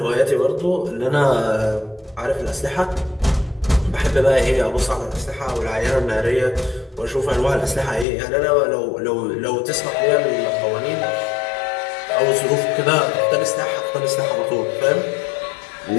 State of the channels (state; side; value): drops out; right; at 8.1 s